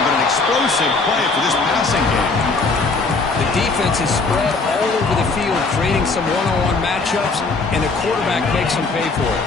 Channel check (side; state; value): right; quieter; 3.9 dB